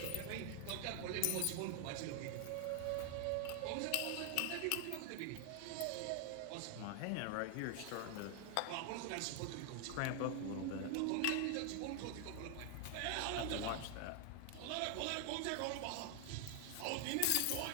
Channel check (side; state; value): both; different; correlation 0.00